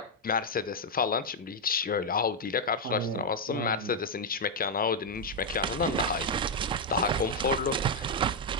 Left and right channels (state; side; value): normal; both; correlation -0.01